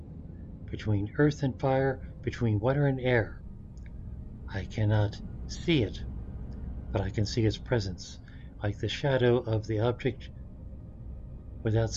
between earth and fire, between water and air. I cannot see it, but I can see its presence, like the shadow of the object without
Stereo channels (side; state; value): both; identical; correlation 1.00